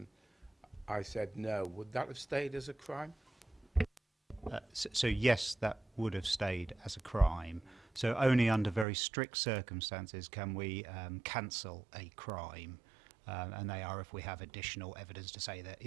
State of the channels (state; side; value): drops out; left; at 8.8 s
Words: I said no. Would that have stayed as a crime? So yes, that would have stayed as a crime. So only under very strict circumstances can we cancel a crime, and they are if we have additional evidence to say that,